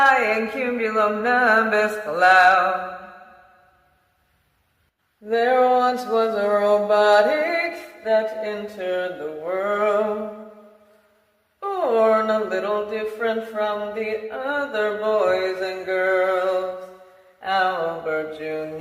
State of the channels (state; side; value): identical; both; correlation 1.00